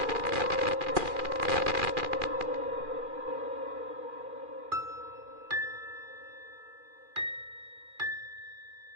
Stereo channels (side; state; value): left; late; 2.4 ms